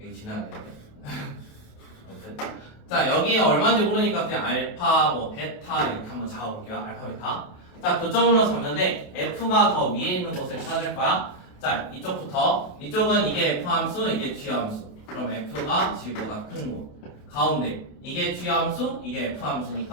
지나야 되는데. 아무튼. 자, 여기 얼마인지 모르니까 그냥 알파, 뭐 베타 이렇게 한번 잡아볼게요. 알파, 베타. 자, 교점으로 잡는데 f가 더 위에 있는 것을 찾을 거야. 자, 이쪽부터. 이쪽은 이게 f 함수, 이게 g 함수. 그럼 f가 g보다 큰 곳. 가운데 이게 g 함수, 이게 f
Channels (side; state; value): right; late; 28 ms